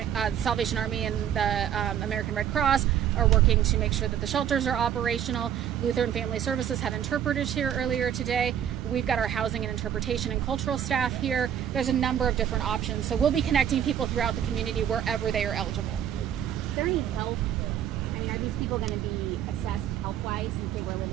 Salvation Army and the American Red Cross are working to make sure that the shelters are operational. Lutheran Family Services had interpreters here earlier today. We've got our housing and interpretation and cultural staff here. There's a number of different options. So we'll be connecting people throughout the community wherever they are eligible. Is there any health? I mean, are these people going to be assessed health-wise since they were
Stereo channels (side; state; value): left; quieter; 9.8 dB